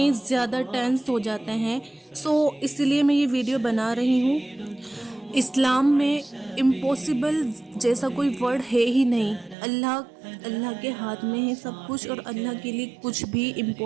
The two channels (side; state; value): left; drops out; at 9.6 s